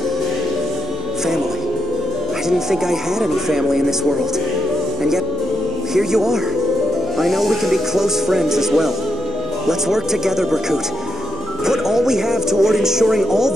Family. I didn't think I had any family in this world. And yet, here you are. I know we can be close friends as well. Let's work together, Berkut. Put all we have toward ensuring all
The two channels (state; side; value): noise; right; hum, 21 dB below the sound